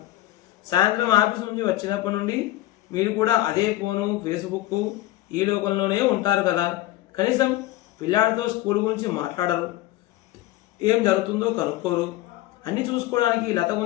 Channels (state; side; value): quieter; right; 15.7 dB